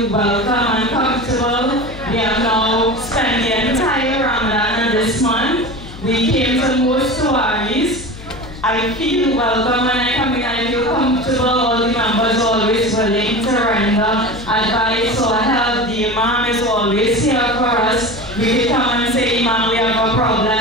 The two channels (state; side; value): noise; left; hum, 15 dB below the sound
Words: welcome and comfortable. We have now spent the entire Ramadan this month. We came to most Tawaris. I feel welcome when I come in, I feel comfortable. All the members are always willing to render advice or help. The Imam is always here for us. We can come and say, Imam, we have a problem,